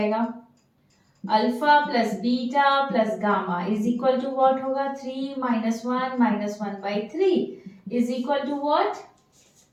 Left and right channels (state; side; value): identical; both; correlation 1.00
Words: alpha plus beta plus gamma is equal to what होगा 3 -1 -1/3 is equal to what